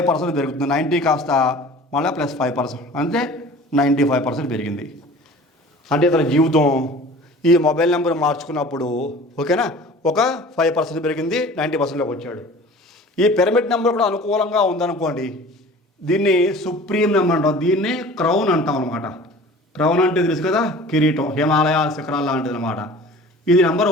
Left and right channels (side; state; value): both; normal; correlation 0.43